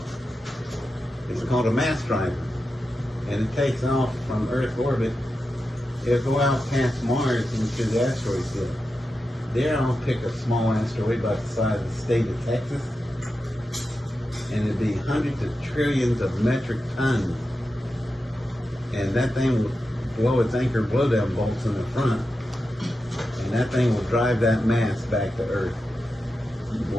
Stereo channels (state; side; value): normal; both; correlation 0.90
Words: it's called a mass driver, and it takes off from Earth orbit. It'll go out past Mars into the asteroid field. There I'll pick a small asteroid about the size of the state of Texas, and it'd be hundreds of trillions of metric tons. And that thing will blow its anchor blowdown bolts in the front, and that thing will drive that mass back to Earth.